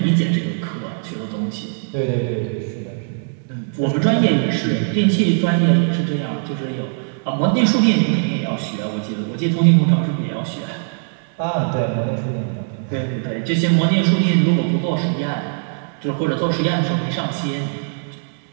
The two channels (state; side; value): silent; left; 66 dB below the other